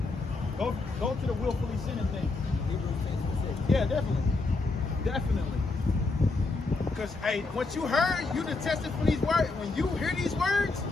go to the willfully sinning thing. Yeah, definitely. Because, hey, once you heard, you done tested for these words. When you hear these words,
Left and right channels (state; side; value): quieter; right; 3.6 dB